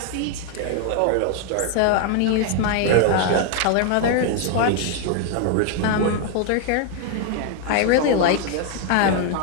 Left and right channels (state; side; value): different; both; correlation 0.01